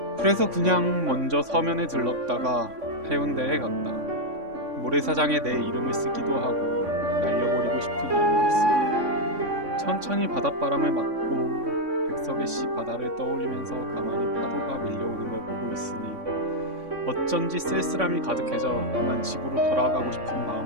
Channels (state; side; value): late; left; 3.6 ms